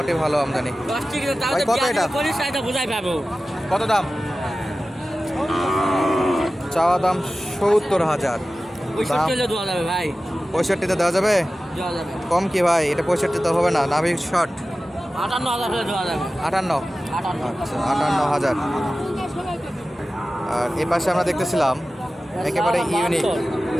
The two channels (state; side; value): normal; both; correlation 0.95